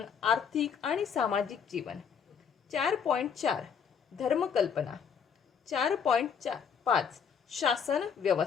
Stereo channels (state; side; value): quieter; right; 7.0 dB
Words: आर्थिक आणि सामाजिक जीवन, 4.4 धर्मकल्पना, 4.5 शासन